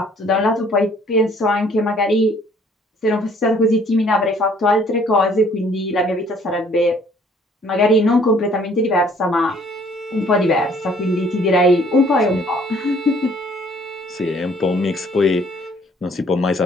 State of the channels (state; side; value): normal; both; correlation 0.59